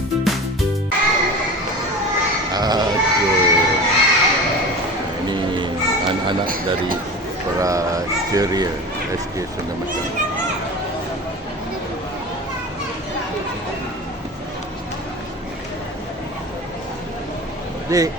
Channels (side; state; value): both; normal; correlation 0.34